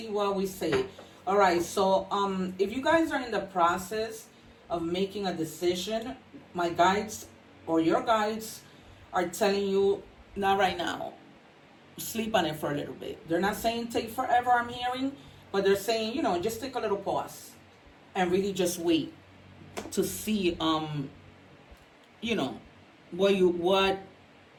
what we say. All right, so if you guys are in the process of making a decision, my guides or your guides are telling you, not right now. Sleep on it for a little bit. They're not saying take forever, I'm hearing, but they're saying, you know, just take a little pause and really just wait to see, you know,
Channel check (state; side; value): identical; both; correlation 1.00